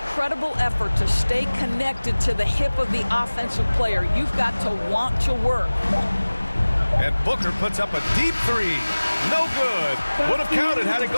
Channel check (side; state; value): both; inverted; correlation -1.00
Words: effort to stay connected to the hip of the offensive player. You've got to want to work. And Booker puts up a deep 3. No good. Would have counted had it